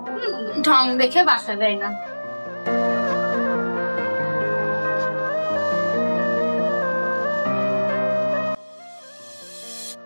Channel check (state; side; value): inverted; both; correlation -1.00